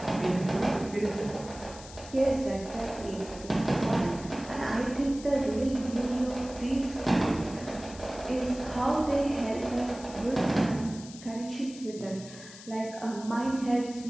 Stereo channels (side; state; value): left; noise; hiss, 16 dB below the sound